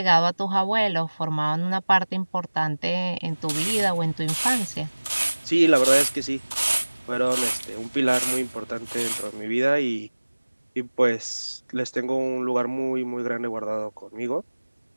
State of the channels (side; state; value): both; inverted; correlation -1.00